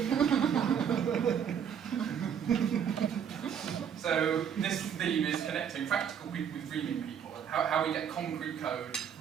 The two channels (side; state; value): left; quieter; 8.1 dB